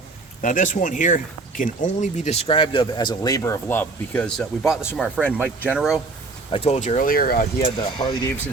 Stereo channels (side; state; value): left; quieter; 3.7 dB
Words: Now this one here can only be described of as a labor of love, because we bought this from our friend Mike Genero. I told you earlier, he had the Harley Davidson